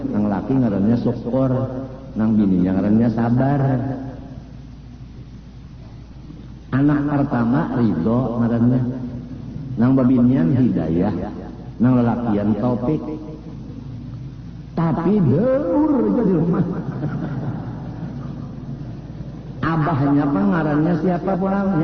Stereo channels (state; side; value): identical; both; correlation 1.00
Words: nang laki ngarannya syukur, nang bininya ngarannya sabar. Anak pertama ridho ngarannya, nang babinian hidayah, nang lelakian taufik. Tapi deur jadi rumah. Abahnya pengarannya siapa